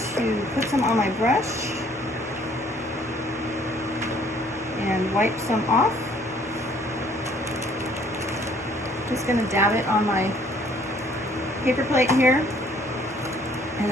to put some on my brush and wipe some off. Just going to dab it on my paper plate here, and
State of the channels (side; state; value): both; normal; correlation 0.60